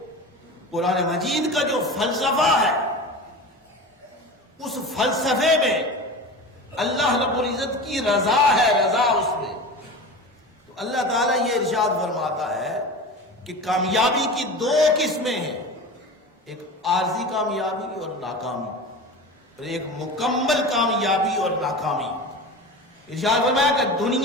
قرآن مجید کا جو فلسفہ ہے، اس فلسفے میں اللہ رب العزت کی رضا ہے، رضا اس میں۔ تو اللہ تعالیٰ یہ ارشاد فرماتا ہے کہ کامیابی کی دو قسمیں ہیں، ایک عارضی کامیابی اور ناکامی، اور ایک مکمل کامیابی اور ناکامی۔ ارشاد فرمایا کہ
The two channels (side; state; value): both; normal; correlation 0.31